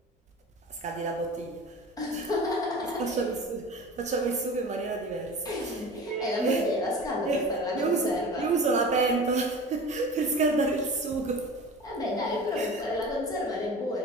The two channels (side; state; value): both; normal; correlation 0.37